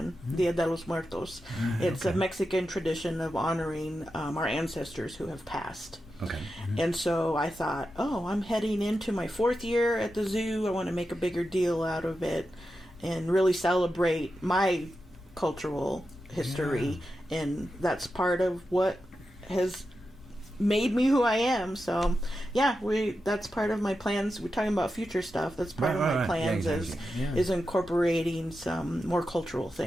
Dia de los Muertos. It's a Mexican tradition of honoring our ancestors who have passed. Okay. And so I thought, I'm heading into my 4th year at the zoo. I want to make a bigger deal out of it and really celebrate my cultural history, and that's part of what has made me who I am. So that's part of my plans. We're talking about future stuff. That's part of my plans is incorporating some more cultural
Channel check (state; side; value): normal; both; correlation 0.90